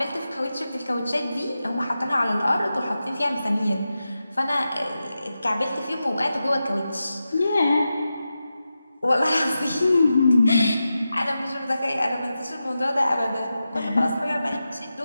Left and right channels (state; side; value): inverted; both; correlation -0.91